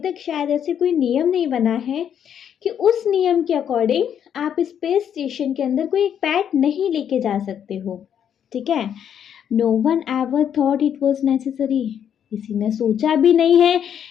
शायद ऐसे कोई नियम नहीं बना है कि उस नियम के अकॉर्डिंग आप स्पेस स्टेशन के अंदर कोई एक पेट नहीं लेके जा सकते हो, ठीक है। No one ever thought it was necessary, किसी ने सोचा भी नहीं है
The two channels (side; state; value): right; quieter; 8.9 dB